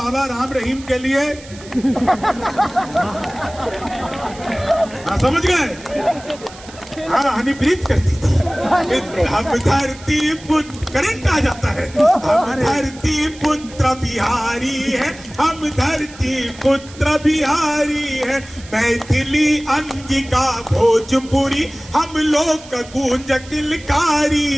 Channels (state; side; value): noise; right; hiss, 19 dB below the sound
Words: राम रहीम के लिए। हाँ समझ गए, हाँ हनीप्रीत करती थी। हम धरती पुत्र, करंट आ जाता है। हम धरती पुत्र बिहारी है, हम धरती पुत्र बिहारी है। मैथिली अंगिका भोजपुरी हम लोग गूंज किलकारी